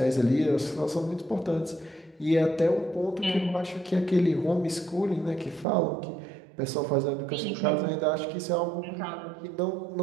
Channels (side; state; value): left; drops out; at 5.7 s